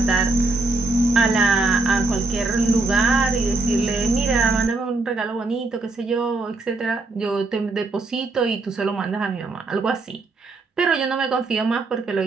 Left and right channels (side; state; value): left; quieter; 3.3 dB